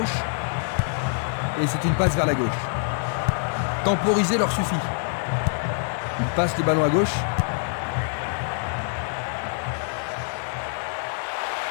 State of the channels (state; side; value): silent; right; 60 dB below the other